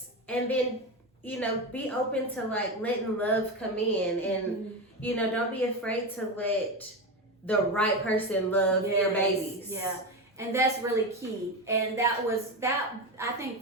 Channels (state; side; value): normal; both; correlation 0.18